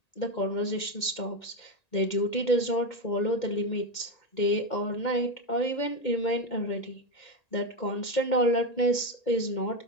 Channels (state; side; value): late; right; 1.8 ms